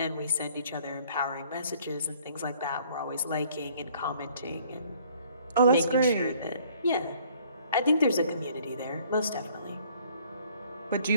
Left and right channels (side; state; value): both; inverted; correlation -0.59